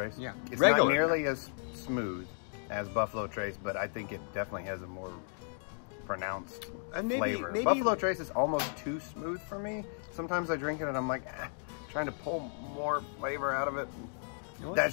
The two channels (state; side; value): silent; right; 55 dB below the other